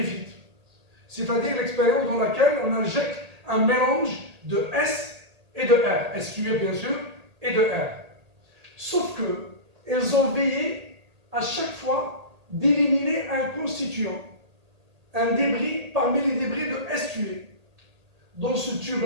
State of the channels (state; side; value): late; left; 1.8 ms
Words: c'est-à-dire l'expérience dans laquelle on injecte un mélange de S et de R, S tué bien sûr, et de R. Sauf que, elles ont veillé à chaque fois d'éliminer un constituant, un débris parmi les débris de S tué. Dans ce